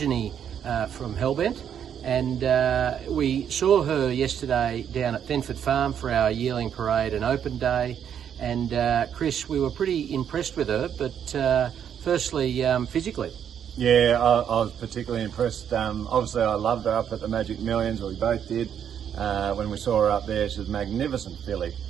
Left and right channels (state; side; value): quieter; left; 8.8 dB